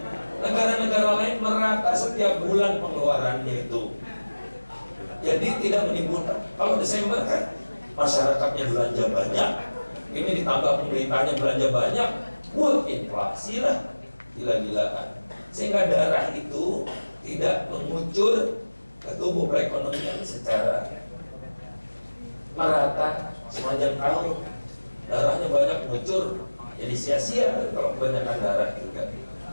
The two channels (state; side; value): inverted; both; correlation -1.00